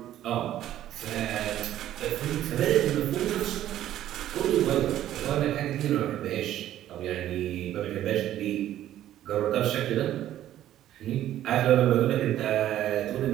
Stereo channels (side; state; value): left; quieter; 12.5 dB